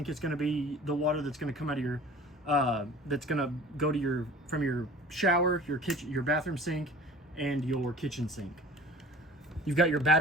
is going to be the water that's going to come out of your that's going to go to from your shower, your kitchen, your bathroom sink, and your kitchen sink. You've got your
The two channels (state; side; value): normal; both; correlation 0.44